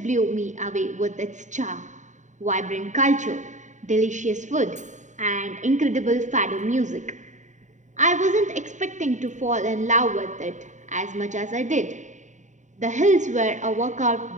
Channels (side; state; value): left; late; 0.35 ms